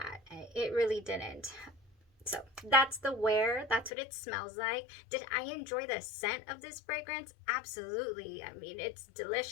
It really didn't. So that's the wear. That's what it smells like. Did I enjoy the scent of this fragrance? Absolutely. I mean, it's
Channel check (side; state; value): right; drops out; at 3.9 s